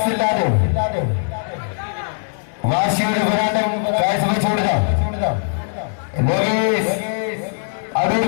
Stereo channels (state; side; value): silent; right; digital silence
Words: വാശിയുടെ പോരാട്ടം കാഴ്ചവെച്ചുകൊടുത്ത അടൂർ